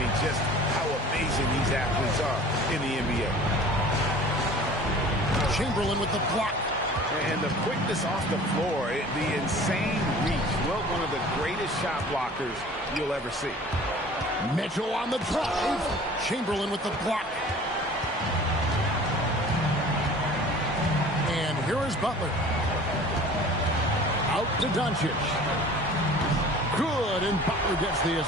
just how amazing these athletes are in the NBA. Chamberlain with the block. And the quickness off the floor, the insane reach. Well, one of the greatest shot blockers you'll ever see. Mitchell on the drive. Chamberlain with the block. And here is Butler. Out to Doncic. Good, and Butler gets the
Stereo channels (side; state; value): both; normal; correlation 0.45